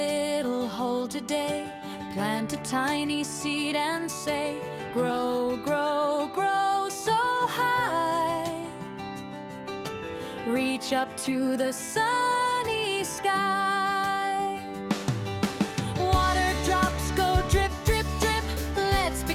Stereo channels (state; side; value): identical; both; correlation 1.00